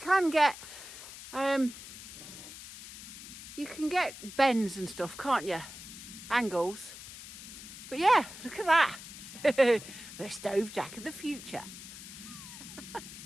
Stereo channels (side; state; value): left; noise; hiss, 13 dB below the sound